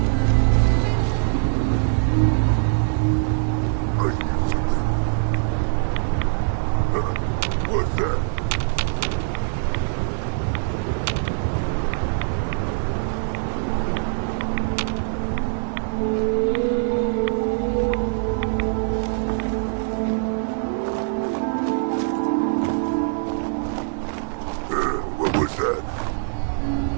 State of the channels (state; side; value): silent; left; 59 dB below the other